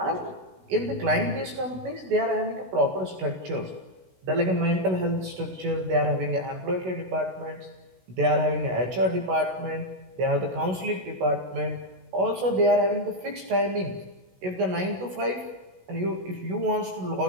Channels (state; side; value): late; left; 16 ms